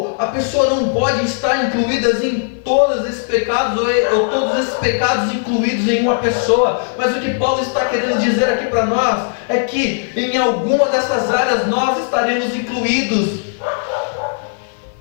a pessoa não pode estar incluída em todos esses pecados, ou todos esses pecados incluídos em uma pessoa. Mas o que Paulo está querendo dizer aqui para nós é que em alguma dessas áreas nós estaremos incluídos.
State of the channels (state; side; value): silent; right; 56 dB below the other